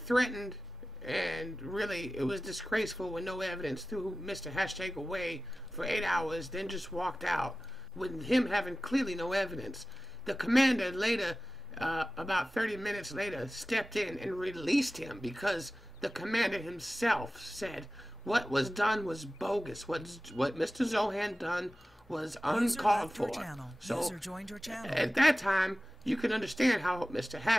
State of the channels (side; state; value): both; normal; correlation 0.96